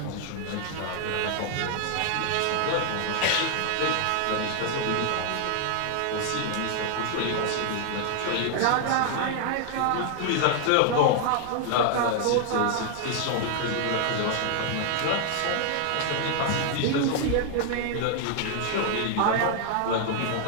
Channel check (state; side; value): different; both; correlation 0.00